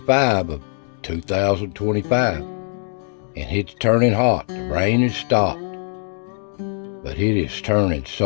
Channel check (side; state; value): right; silent; 59 dB below the other